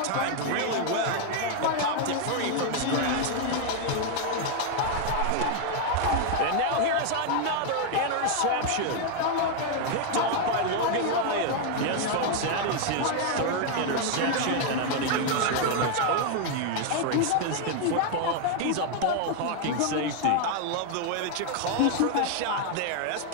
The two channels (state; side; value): different; both; correlation 0.00